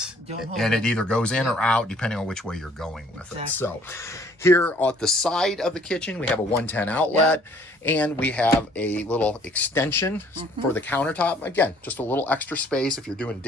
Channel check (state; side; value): normal; both; correlation 0.59